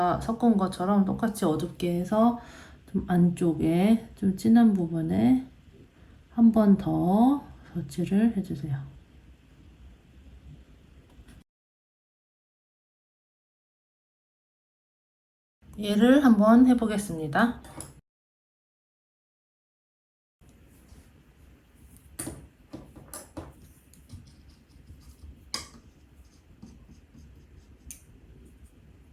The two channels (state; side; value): identical; both; correlation 1.00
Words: 섞은 것처럼 똑같이 어둡게 해서 좀 안쪽에 좀 진한 부분에 한 번 더 덧칠을 해주세요. 얘를 한번 해보겠습니다.